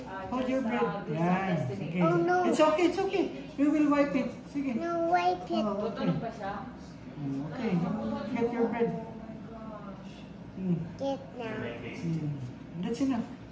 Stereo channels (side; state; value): both; identical; correlation 1.00